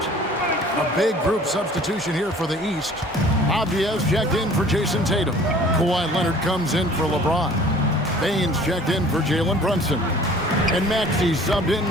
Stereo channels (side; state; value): both; normal; correlation 0.50